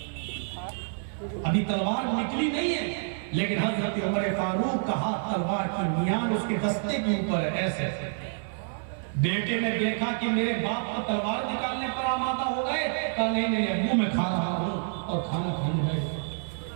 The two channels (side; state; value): left; silent; digital silence